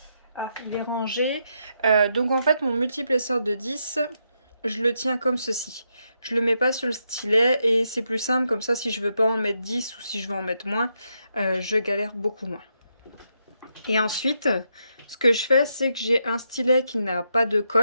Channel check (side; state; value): both; inverted; correlation -0.81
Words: Ah, il est rangé. Donc, en fait, mon multiplesseur de 10, je le tiens comme ceci. Je le mets pas sur le stylet et c'est plus simple comme ça si je veux pas en mettre 10 ou si je veux en mettre moins, je galère beaucoup moins. Et ensuite, ce que je fais, c'est que j'ai un stylet qui n'a pas de